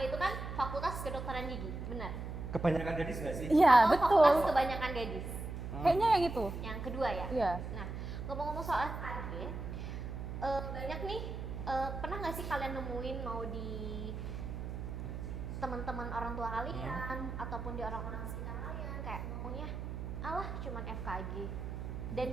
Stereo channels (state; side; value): noise; right; hum, 6 dB below the sound